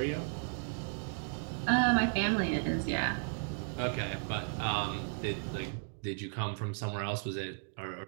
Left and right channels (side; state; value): left; silent; 55 dB below the other